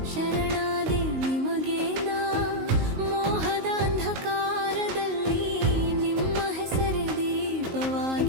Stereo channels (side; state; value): left; late; 19 ms